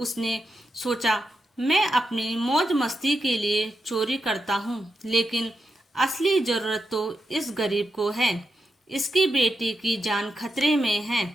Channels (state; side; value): normal; both; correlation 0.86